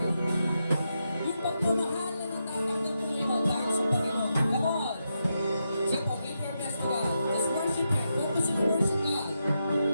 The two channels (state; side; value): inverted; both; correlation -0.85